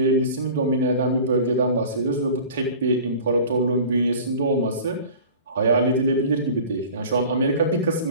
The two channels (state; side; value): inverted; both; correlation -0.41